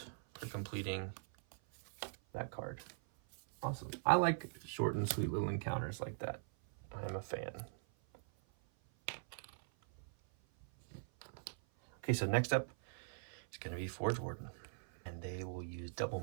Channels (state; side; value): silent; left; 50 dB below the other